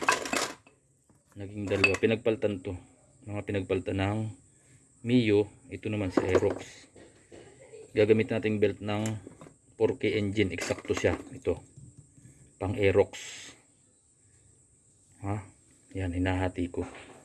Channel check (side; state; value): both; identical; correlation 1.00